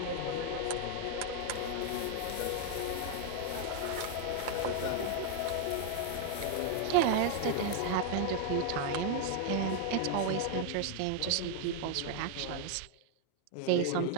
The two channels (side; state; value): both; different; correlation 0.00